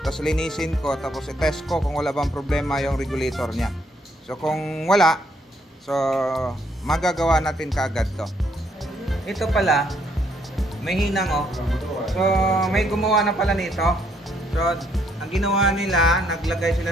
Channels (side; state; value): both; normal; correlation 0.70